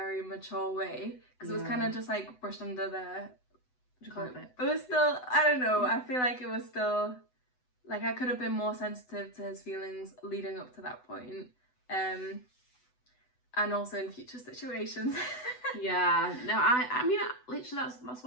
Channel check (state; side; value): late; right; 8.0 ms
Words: mature way, because it was kind of just like brushed under the... What do you call it? It was still, I don't know, I feel like it was still, like I could have been more sensitive to his feelings leading up to that point. And also in future situations. Yeah. No, I mean, literally that's